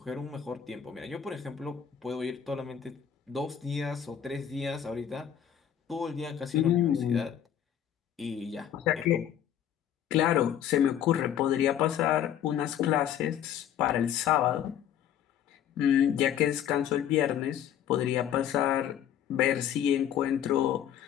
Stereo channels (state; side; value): quieter; right; 9.8 dB